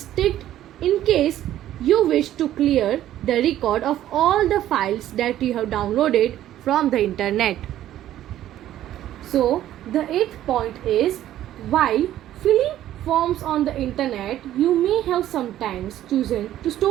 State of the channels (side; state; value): left; quieter; 12.7 dB